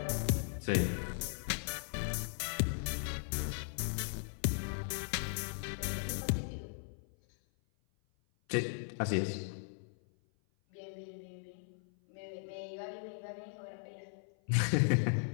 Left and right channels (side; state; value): right; silent; 53 dB below the other